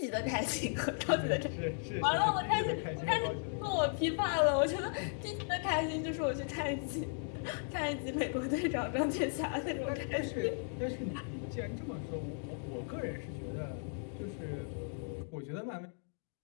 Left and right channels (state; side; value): silent; right; 54 dB below the other